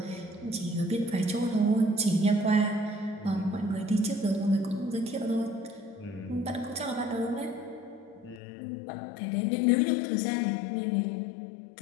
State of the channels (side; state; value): right; drops out; at 8.4 s